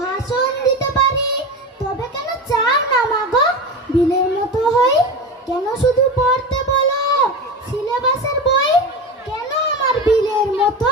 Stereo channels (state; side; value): normal; both; correlation 0.25